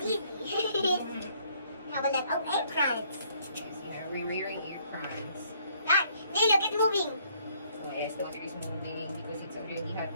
easy. Have a look. Oh, eggplants. Yes, yeah, we're wearing ear prawns. Ah, hey, look, it's moving. Yes, the water is moving because it's already hot.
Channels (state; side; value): inverted; both; correlation -0.65